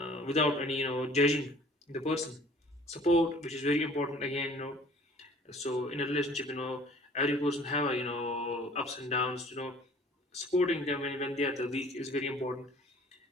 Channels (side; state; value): both; normal; correlation 0.51